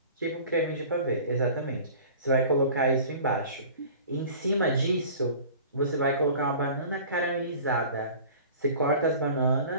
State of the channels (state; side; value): inverted; both; correlation -0.43